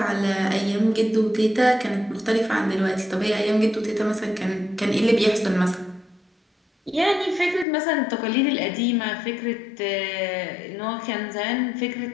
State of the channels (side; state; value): right; drops out; at 7.7 s